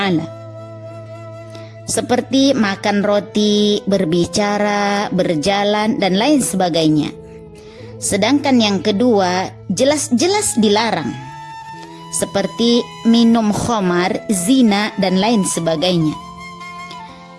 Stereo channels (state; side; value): identical; both; correlation 1.00